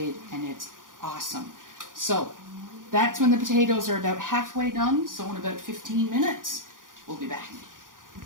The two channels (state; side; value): late; left; 0.89 ms